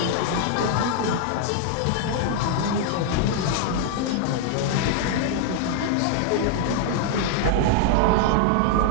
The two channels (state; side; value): different; both; correlation 0.00